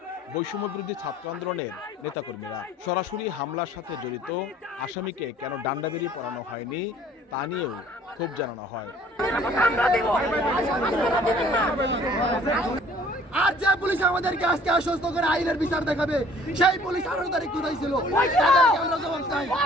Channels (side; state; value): both; normal; correlation 0.54